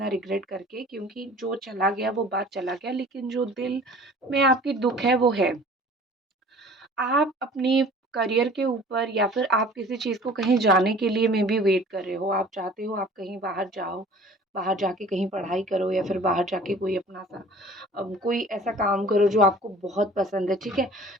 रिग्रेट करके, क्योंकि जो चला गया वो बात चला गया, लेकिन जो दिल में आपकी दुःख है वो है। आप अपनी करियर के ऊपर या फिर आप किसी चीज़ को कहीं जाने के लिए मे बी वेट कर रहे हो। आप चाहते हो आप कहीं बाहर जाओ, बाहर जाके कहीं पढ़ाई करो या फिर बाहर जाके कोई अपना सा कोई ऐसा काम करो जो आपको बहुत पसंद है, ठीक है?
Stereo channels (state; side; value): normal; both; correlation 0.47